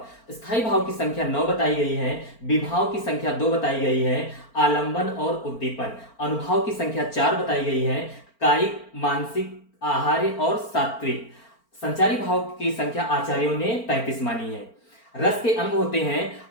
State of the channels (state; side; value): late; right; 4.4 ms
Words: स्थायी भाव की संख्या 9 बताई गई है, विभाव की संख्या 2 बताई गई है, आलंबन और उद्दीपन। अनुभाव की संख्या 4 बताई गई है, कायिक, मानसिक, आहार्य और सात्विक। संचारी भाव की संख्या आचार्यों ने 33 मानी है। रस के अंग होते हैं